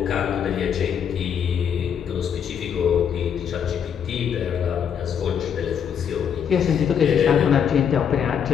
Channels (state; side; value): quieter; right; 8.0 dB